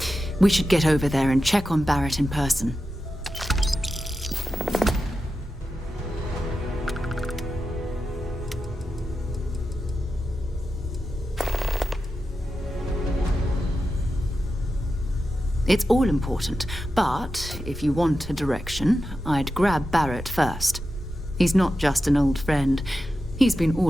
We should get over there and check on Barrett in person. It's all important, but if you want a direction, I'd grab Barrett first. He's not just an old friend. He's been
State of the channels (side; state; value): both; normal; correlation 0.91